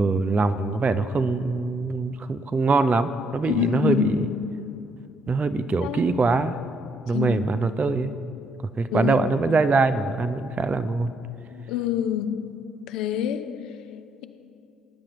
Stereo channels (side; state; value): both; normal; correlation 0.72